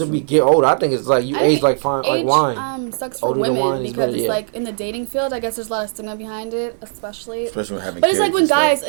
get older. I think it's like you age like fine, like wine. Sucks for women because it's like in the dating field. I guess there's a lot of stigma behind it, especially when having. But it's like when guys,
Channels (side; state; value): left; silent; digital silence